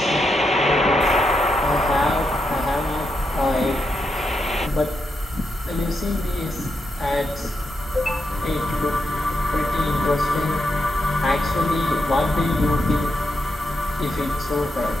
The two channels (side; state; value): both; normal; correlation 0.83